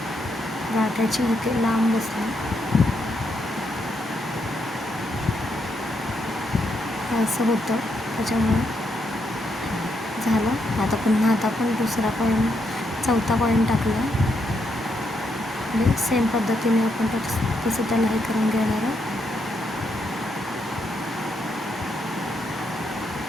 गाठाची इथे लांब बसली. असं होतं, त्याच्यामुळे झालं. आता पुन्हा आपण दुसरा कॉईन, चौथा कॉईन टाकला. आणि सेम पद्धतीने आपण तसं त्याला हे करून घेणार आहोत.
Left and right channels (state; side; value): normal; both; correlation 0.79